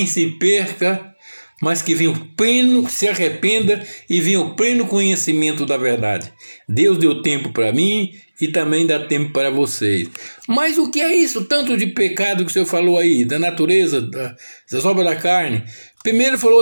se perca, mas que venha o pleno, se arrependa e venha o pleno conhecimento da verdade. Deus deu tempo para mim e também dá tempo para vocês. Mas o que é isso? Tanto de pecado que o senhor falou aí, da natureza, das obras da carne. Primeiro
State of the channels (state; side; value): inverted; both; correlation -1.00